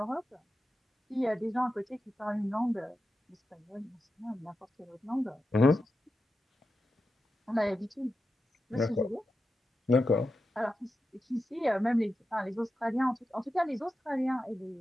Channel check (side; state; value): both; normal; correlation 0.90